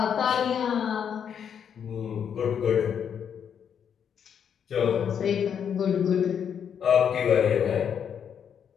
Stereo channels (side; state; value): right; quieter; 8.0 dB